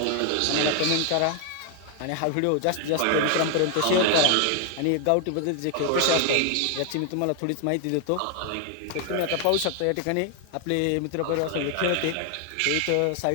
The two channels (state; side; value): different; both; correlation 0.00